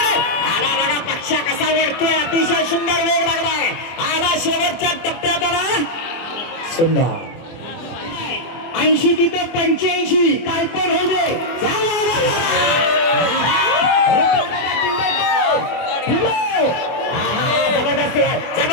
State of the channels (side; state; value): right; late; 24 ms